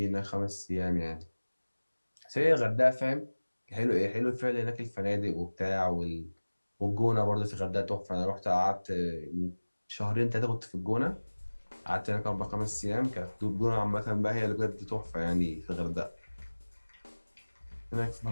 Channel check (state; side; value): inverted; both; correlation -1.00